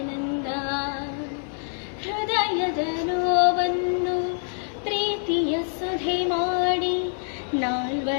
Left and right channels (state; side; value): silent; right; 61 dB below the other